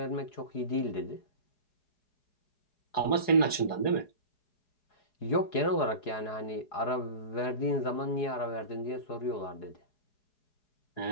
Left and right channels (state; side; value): late; right; 4.8 ms